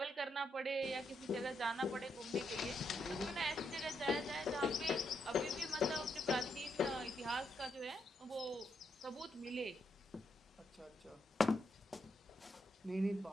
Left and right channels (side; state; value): both; normal; correlation 0.80